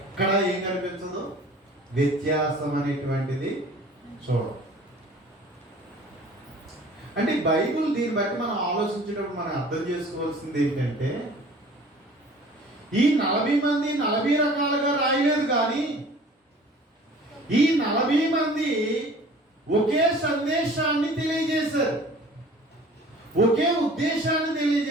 ఏం కనిపించదు, వ్యత్యాసం అనేటువంటిది చూడం. అంటే బైబిల్ దీన్ని బట్టి మనం ఆలోచించేటప్పుడు మనం అర్థం చేసుకోవాల్సింది ఏంటంటే, ఈ 40 మంది 40 రకాలుగా రాయలేదు, కానీ ఈ 40 మంది ఒకే సందేశాన్ని తెలియజేశారు, ఒకే ఉద్దేశాన్ని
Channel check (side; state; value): both; normal; correlation 0.48